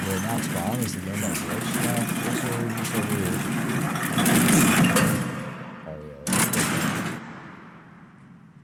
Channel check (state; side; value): identical; both; correlation 1.00